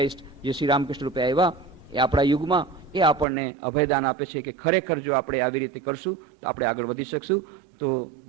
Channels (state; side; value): drops out; left; at 3.2 s